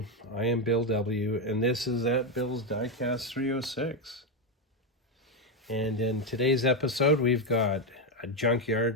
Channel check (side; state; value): both; normal; correlation 0.06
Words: I am Bill W., and this is at Bill's Diecast 306. And in today's episode, we've got a